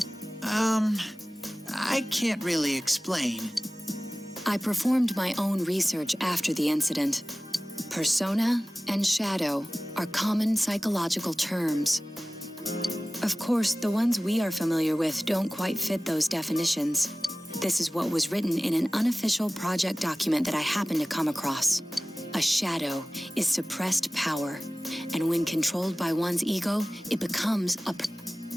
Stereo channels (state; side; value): normal; both; correlation 0.97